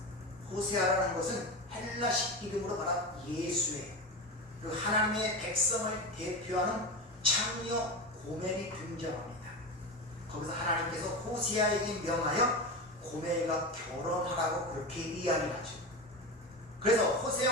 호세아라는 것은 헬라식 이름으로 말한 예수의, 그 하나님의 백성을 대표하는 창녀 고멜이 등장합니다. 거기서 하나님께서 호세아에게 명하여 고멜과 결혼하라고 그렇게 이야기하죠. 그래서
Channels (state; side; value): normal; both; correlation 0.22